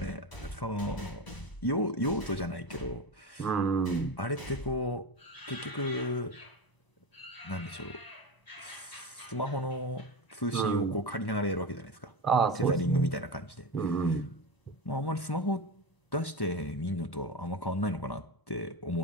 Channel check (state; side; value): late; right; 1.0 ms